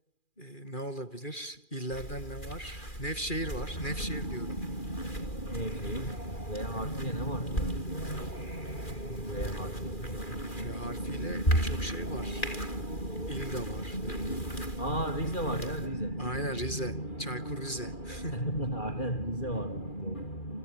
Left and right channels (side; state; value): right; late; 2.4 ms